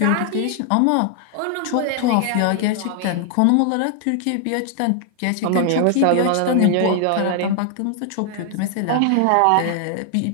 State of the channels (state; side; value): different; both; correlation 0.00